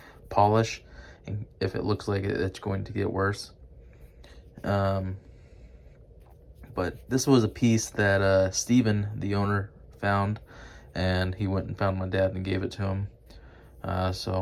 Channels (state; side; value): identical; both; correlation 1.00